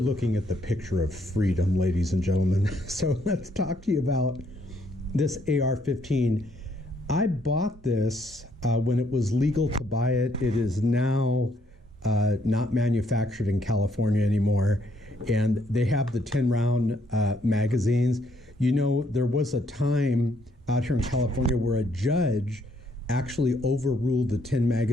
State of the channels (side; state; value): both; normal; correlation 0.70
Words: at the picture of freedom, ladies and gentlemen. So let's talk to you about this AR-15. I bought this when it was legal to buy it. It is now not manufactured in California anymore. And they have the 10-round magazines. You know, there was a time out here in California where a judge actually overruled the 10